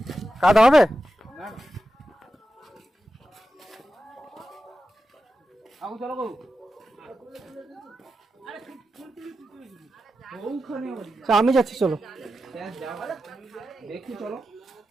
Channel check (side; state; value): both; normal; correlation 0.91